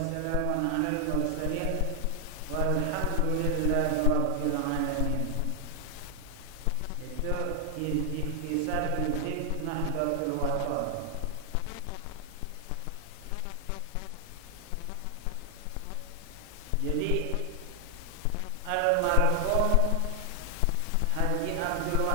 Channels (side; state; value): both; different; correlation 0.00